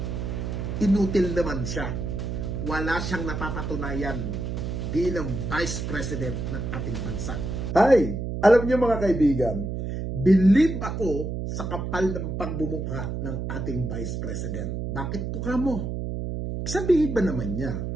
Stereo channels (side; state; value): right; noise; hum, 4 dB below the sound